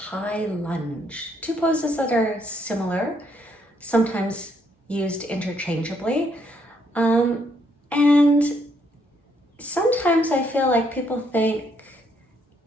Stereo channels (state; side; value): normal; both; correlation 0.72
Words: Lunge. Two poses that are similar, sometimes used interchangeably. And sometimes I feel like people think